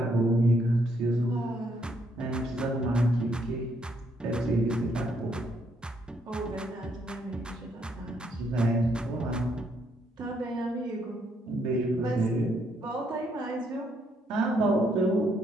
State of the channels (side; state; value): both; normal; correlation 0.72